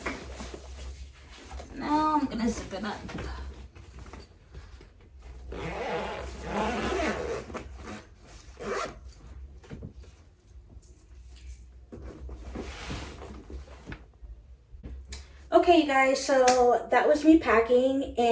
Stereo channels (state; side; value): identical; both; correlation 1.00